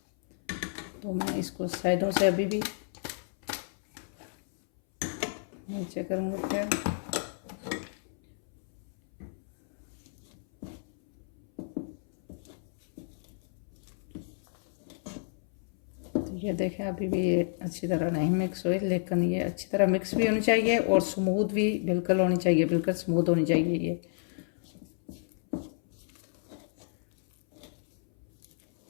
तो मैं इसको साइडों से अभी भी नीचे करूँगी फिर। तो ये देखें अभी भी ये अच्छी तरह नहीं मिक्स हुई, लेकिन ये अच्छी तरह मिक्स भी होनी चाहिए और स्मूथ भी बिल्कुल होनी चाहिए, बिल्कुल स्मूथ होनी चाहिए ये।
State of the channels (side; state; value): right; silent; 57 dB below the other